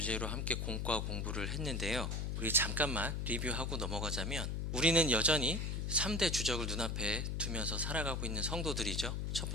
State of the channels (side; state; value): left; noise; hum, 1 dB below the sound